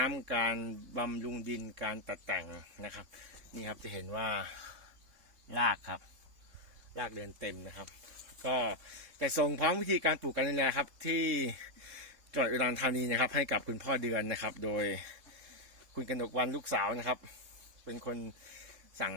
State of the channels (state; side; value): late; left; 3.7 ms